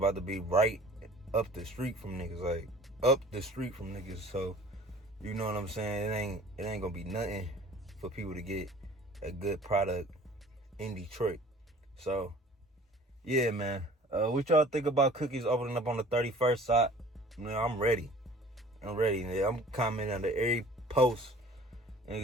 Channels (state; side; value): normal; both; correlation 0.48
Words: to be right up the street from niggas. Like, up the street from niggas. So, you know what I'm saying? It ain't gonna be nothing for people to get a good product in Detroit. So, yeah, man. What y'all think about Cookies opening up on the 31st? I'm ready. Yeah, I'm commenting under every post